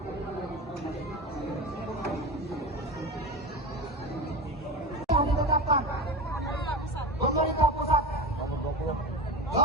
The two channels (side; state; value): both; normal; correlation 0.24